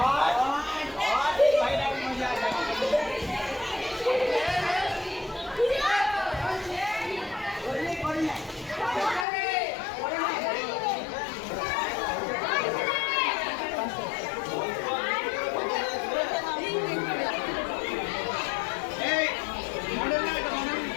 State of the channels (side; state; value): right; drops out; at 9.2 s